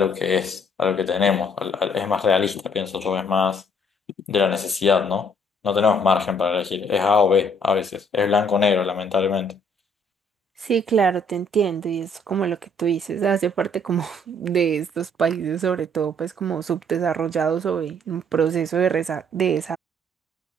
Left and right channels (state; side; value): normal; both; correlation 0.63